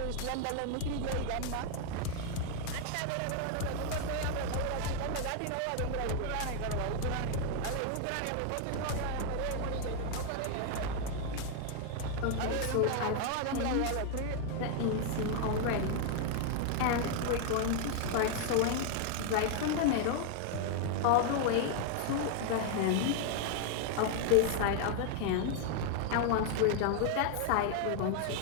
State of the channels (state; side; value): different; both; correlation 0.00